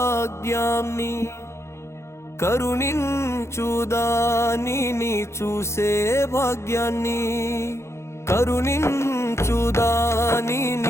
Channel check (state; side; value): late; right; 0.13 ms